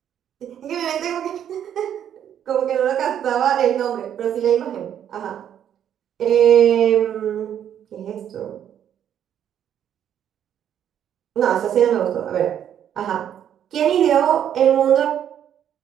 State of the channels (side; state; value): left; quieter; 9.7 dB